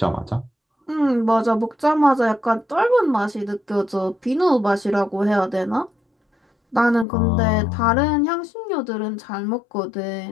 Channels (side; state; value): right; drops out; at 7.1 s